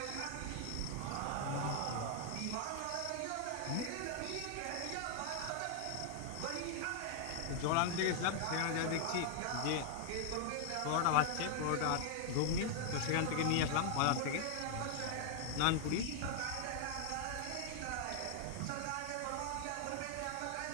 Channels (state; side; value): different; both; correlation 0.00